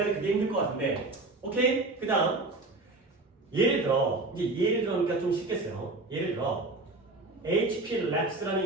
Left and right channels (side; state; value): left; quieter; 3.1 dB